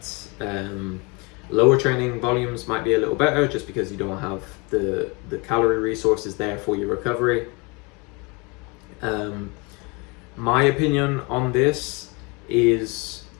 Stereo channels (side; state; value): right; quieter; 28.8 dB